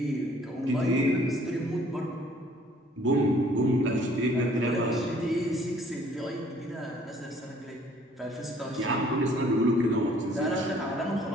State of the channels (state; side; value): normal; both; correlation 0.58